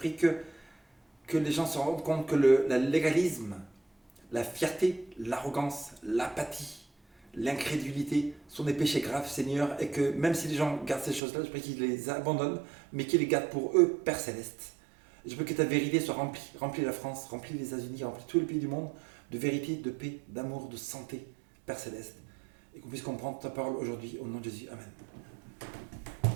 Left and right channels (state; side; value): drops out; left; at 11.2 s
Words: que les gens se rendent compte que le légalisme, la fierté, l'arrogance, l'apathie, l'incrédulité sont des péchés graves, Seigneur, et que même si les gens gardent ces choses-là, je prie qu'ils les abandonnent, mais qu'ils les gardent pour eux, Père Céleste. Je veux que ta vérité soit remplie la France, remplie les États-Unis, remplie tous les pays du monde de vérité, de paix, d'amour, de santé, Père Céleste. Et qu'on puisse comprendre ta parole aujourd'hui, au nom de Jésus. Amen.